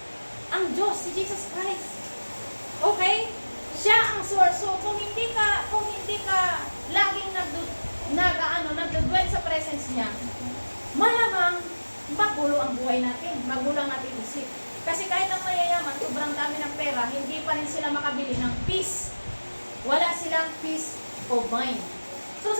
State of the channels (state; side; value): inverted; both; correlation -1.00